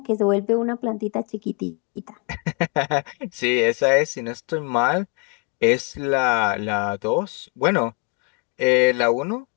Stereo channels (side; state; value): right; quieter; 34.7 dB